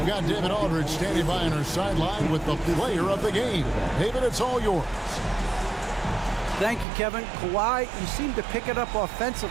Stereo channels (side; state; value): left; drops out; at 6.9 s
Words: got David Aldridge standing by on our sideline with the player of the game. David, it's all yours. Thank you, Kevin. Kawhi, you seem to pick it up